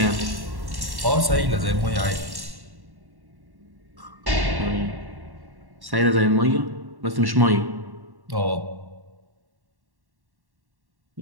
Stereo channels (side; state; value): left; late; 1.1 ms